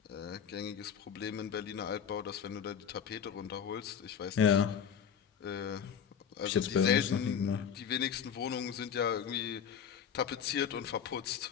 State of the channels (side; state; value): right; quieter; 7.8 dB